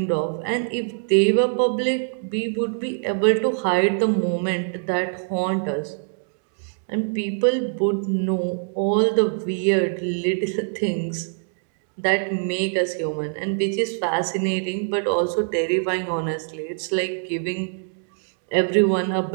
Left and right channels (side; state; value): left; silent; digital silence